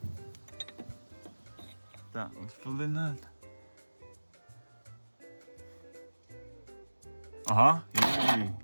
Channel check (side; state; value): both; inverted; correlation -1.00